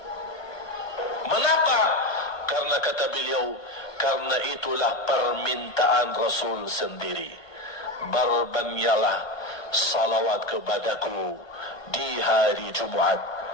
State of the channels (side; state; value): right; late; 1.2 ms